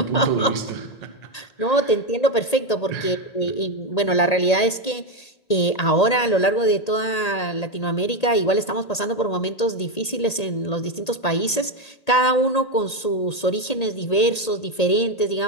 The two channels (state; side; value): late; right; 1.8 ms